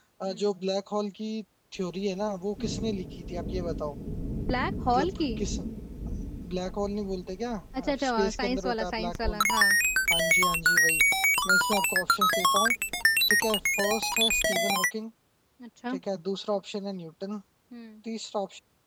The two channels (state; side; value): identical; both; correlation 1.00